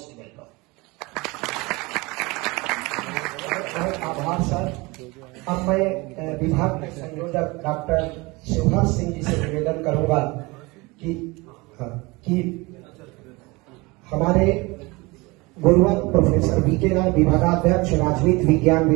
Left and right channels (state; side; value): quieter; left; 24.3 dB